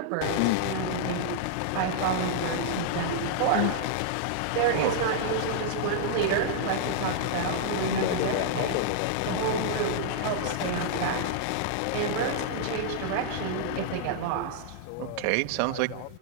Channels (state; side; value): different; both; correlation -0.01